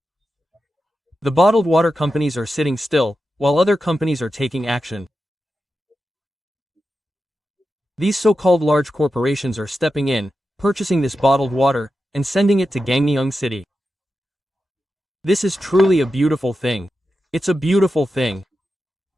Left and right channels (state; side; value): normal; both; correlation 0.91